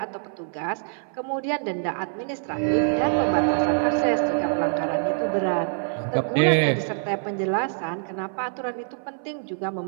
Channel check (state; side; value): silent; left; 61 dB below the other